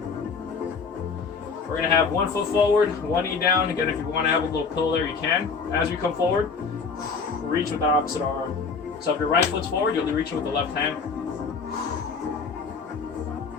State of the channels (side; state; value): right; quieter; 5.1 dB